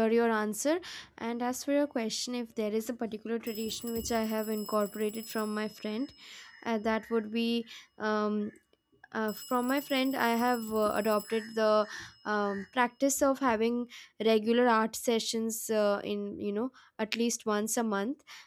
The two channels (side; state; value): both; identical; correlation 1.00